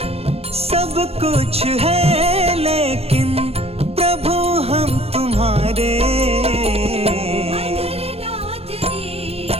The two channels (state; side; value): late; left; 0.29 ms